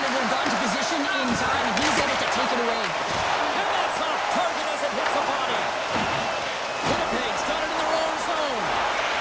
would have gone to position in time. He's able to take it away. And that's off target as it hits the body. Winnipeg's got it in their own zone.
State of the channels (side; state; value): both; identical; correlation 1.00